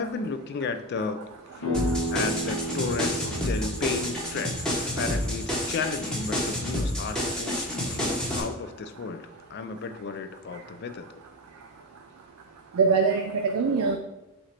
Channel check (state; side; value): normal; both; correlation 0.17